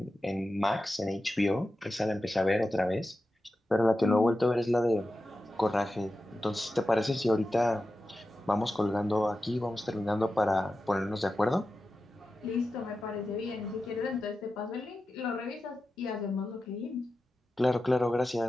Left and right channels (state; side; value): normal; both; correlation 0.92